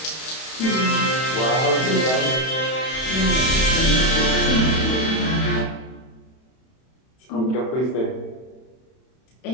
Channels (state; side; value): late; right; 31 ms